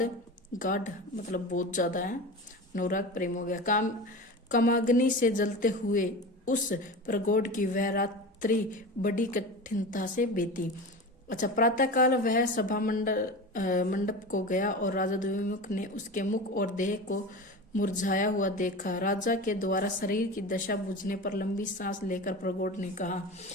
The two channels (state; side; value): normal; both; correlation 0.29